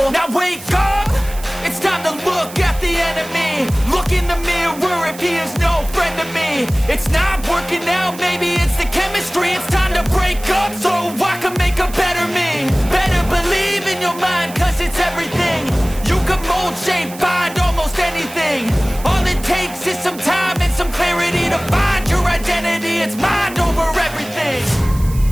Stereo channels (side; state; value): right; noise; hiss, 16 dB below the sound